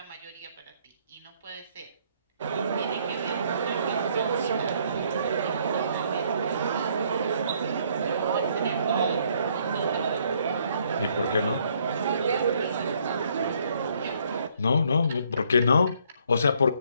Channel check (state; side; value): inverted; both; correlation -0.67